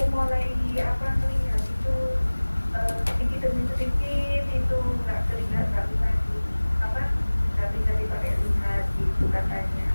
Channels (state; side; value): inverted; both; correlation -1.00